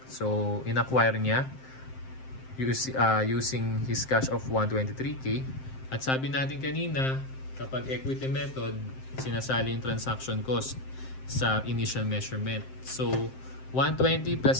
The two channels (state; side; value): late; right; 7.6 ms